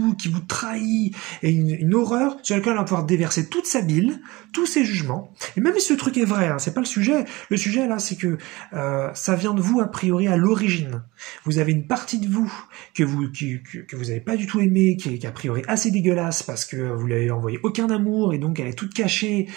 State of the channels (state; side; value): quieter; left; 21.9 dB